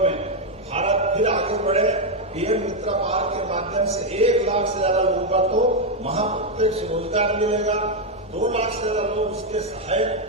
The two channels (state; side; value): normal; both; correlation 0.03